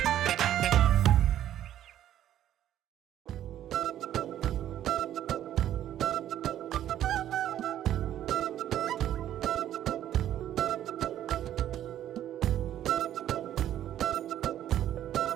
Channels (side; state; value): left; quieter; 11.6 dB